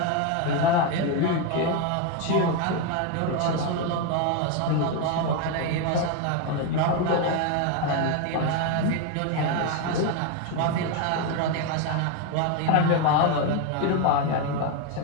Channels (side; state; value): both; different; correlation 0.02